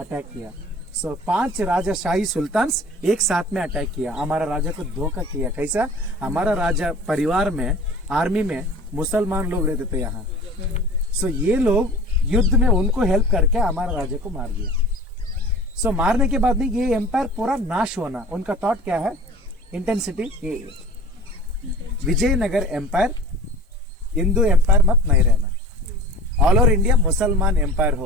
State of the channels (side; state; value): both; normal; correlation 0.41